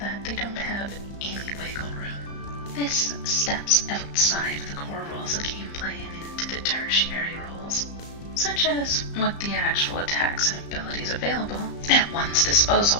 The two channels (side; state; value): right; late; 35 ms